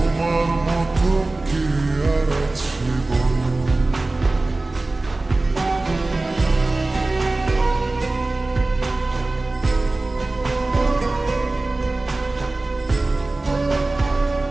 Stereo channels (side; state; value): left; quieter; 3.1 dB